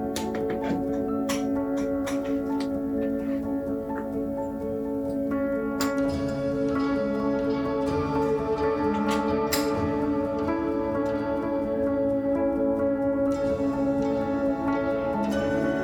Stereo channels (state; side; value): noise; left; hum, 25 dB below the sound